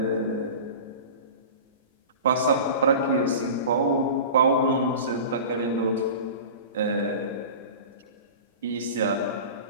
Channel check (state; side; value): inverted; both; correlation -0.35